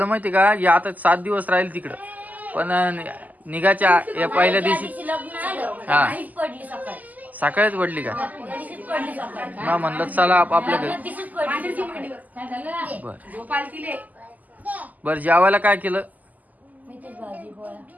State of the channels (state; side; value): late; left; 0.080 ms